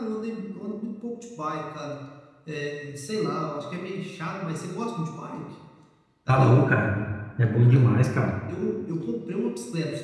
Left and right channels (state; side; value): identical; both; correlation 1.00